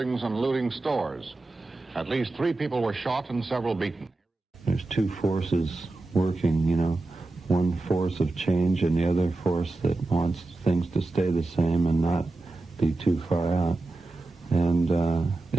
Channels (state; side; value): quieter; left; 3.1 dB